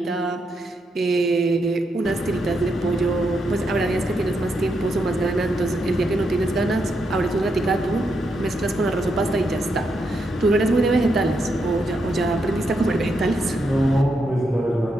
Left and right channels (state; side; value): normal; both; correlation 0.81